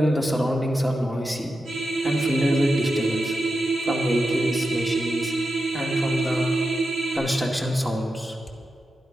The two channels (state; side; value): normal; both; correlation 0.89